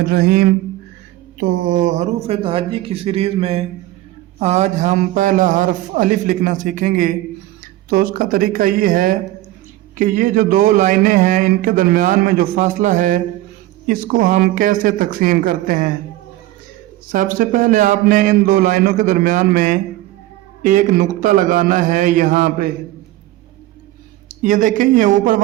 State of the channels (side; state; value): left; quieter; 16.0 dB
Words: तो हरूफ तहज्जी की सीरीज़ में आज हम पहला हर्फ अलिफ लिखना सीखेंगे। तो उसका तरीका ये है कि ये जो दो लाइनें हैं इनके दरमियान में जो फासला है इसको हम कैसे तकसीम करते हैं। सबसे पहले आपने इन दो लाइनों के दरमियान में एक नुक्ता लगाना है। यहाँ पे ये देखें, ये ऊपर